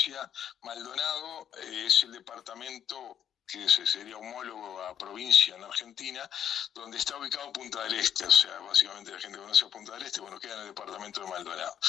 Maldonado es el departamento que sería homólogo a provincia en Argentina, donde está ubicado Punta del Este, o sea, básicamente la gente conoce Punta del Este, bueno, queda en el departamento de Maldonado.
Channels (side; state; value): right; quieter; 9.5 dB